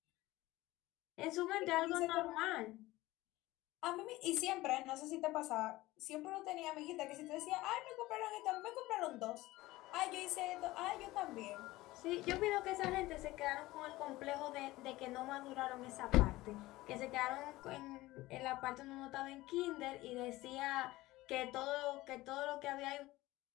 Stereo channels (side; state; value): right; quieter; 18.3 dB